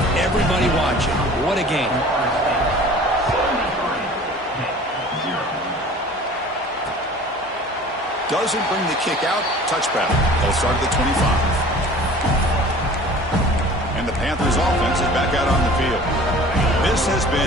Everybody watching. What a game. Doesn't bring the kick out. Touchback. They'll start at the 25. And the Panthers offense is back out on the field. This has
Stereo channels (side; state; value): both; normal; correlation 0.45